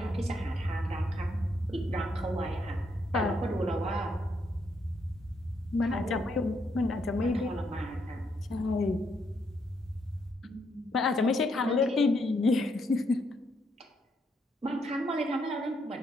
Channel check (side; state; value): both; normal; correlation 0.76